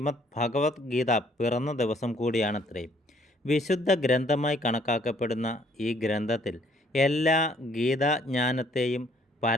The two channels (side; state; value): both; normal; correlation 0.63